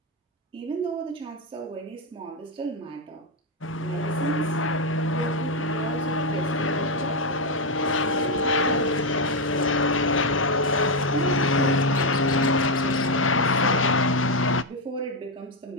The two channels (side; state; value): both; normal; correlation 0.04